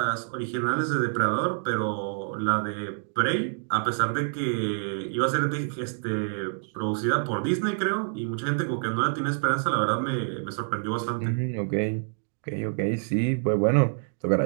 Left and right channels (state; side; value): silent; left; digital silence